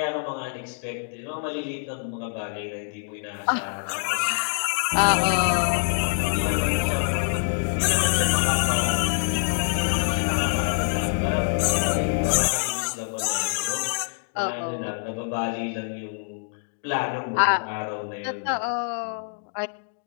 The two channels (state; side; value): silent; right; digital silence